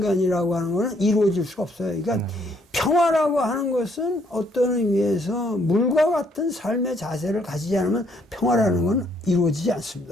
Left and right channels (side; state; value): both; normal; correlation 0.68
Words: 하는 것은 이루어질 수가 없어요. 그러니까 평화라고 하는 것은 어떤 의미에서 물과 같은 삶의 자세를 가지지 않으면 평화라는 건 이루어지지